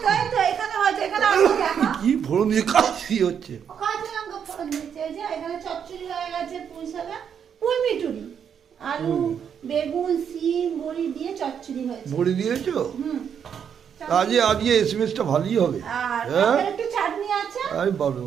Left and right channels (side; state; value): left; quieter; 7.8 dB